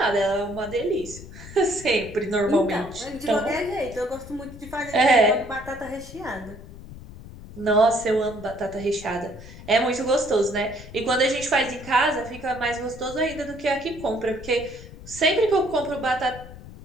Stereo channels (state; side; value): noise; left; rumble, 15 dB below the sound